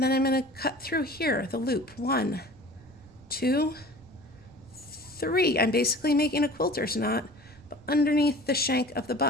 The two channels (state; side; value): noise; right; rumble, 24 dB below the sound